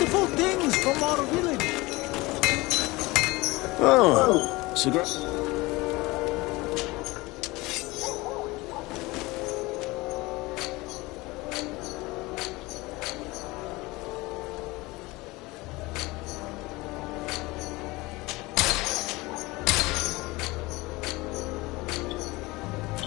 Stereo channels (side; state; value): right; quieter; 21.9 dB